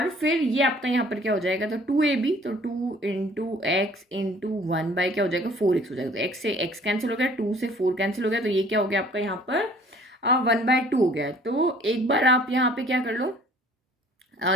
फिर ये आपका यहाँ पर क्या हो जाएगा, तो 2ab, तो 2 इंटू एक्स इंटू 1 बाय क्या हो जाएगा, 4x हो जाएगा। तो x से x कैंसिल हो गया, 2 से 4 कैंसिल हो गया, तो ये क्या हो गया आपका यहाँ पर 1/2 हो गया। तो एक बार आप यहाँ पे क्या कर लो,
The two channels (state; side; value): normal; both; correlation 0.54